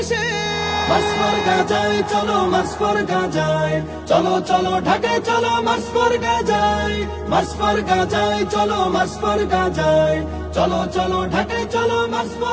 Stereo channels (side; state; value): both; identical; correlation 1.00